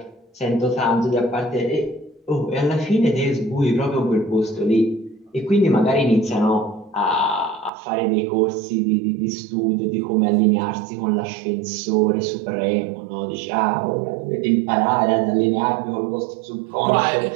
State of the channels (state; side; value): drops out; left; at 7.7 s